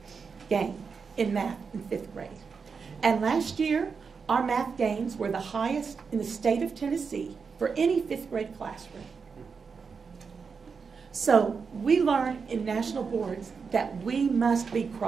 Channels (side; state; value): left; quieter; 5.5 dB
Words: gain in math in 5th grade. And last year, our math gains were the highest in the state of Tennessee for any 5th grade classroom. So we learn in national boards that we must be